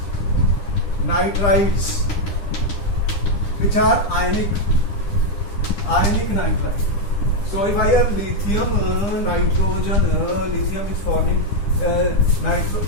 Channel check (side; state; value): right; late; 9.9 ms